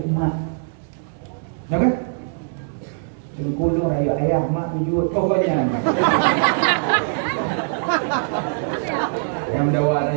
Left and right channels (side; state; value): left; silent; 64 dB below the other